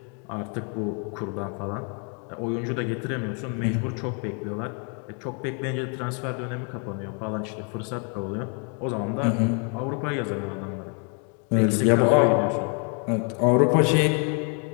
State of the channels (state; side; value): quieter; right; 38.3 dB